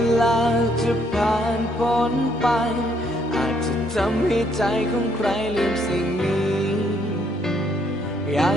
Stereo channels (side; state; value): both; normal; correlation 0.69